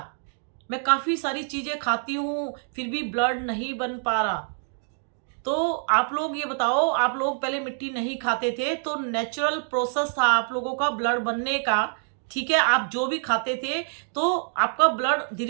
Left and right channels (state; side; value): silent; left; 61 dB below the other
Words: मैं काफ़ी सारी चीज़ें खाती हूँ फिर भी ब्लड नहीं बन पा रहा। तो आप लोग ये बताओ, आप लोग पहले मिट्टी नहीं खाते थे तो नेचुरल प्रोसेस था आप लोगों का ब्लड बनने का, ठीक है। आप जो भी खाते थे तो आपका ब्लड